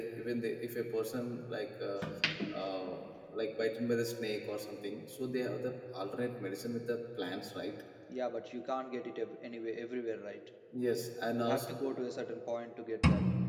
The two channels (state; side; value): identical; both; correlation 1.00